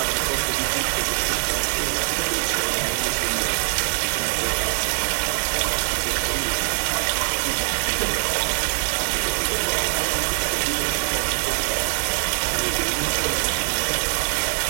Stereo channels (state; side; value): silent; left; digital silence